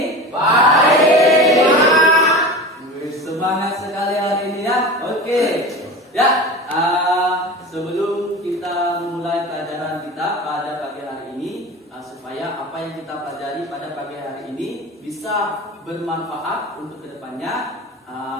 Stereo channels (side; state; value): both; normal; correlation 0.31